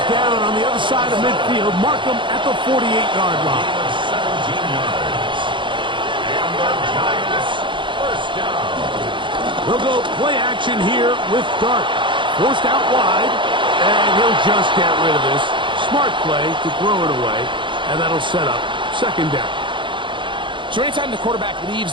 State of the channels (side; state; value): left; late; 0.24 ms